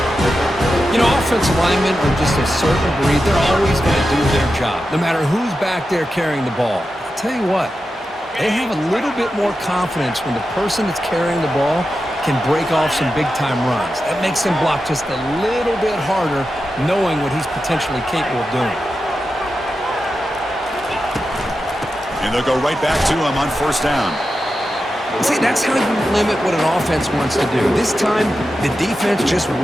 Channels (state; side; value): normal; both; correlation 0.90